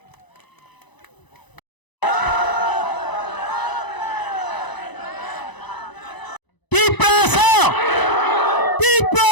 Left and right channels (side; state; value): right; late; 1.0 ms